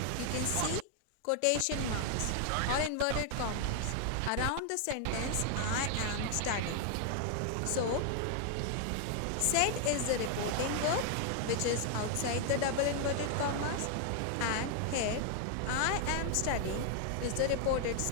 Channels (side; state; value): both; different; correlation 0.00